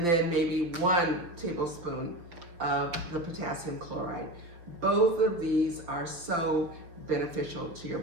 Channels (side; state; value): left; late; 6.0 ms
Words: then maybe 1 tablespoon of the potassium chloride. Both of these are so beneficial to your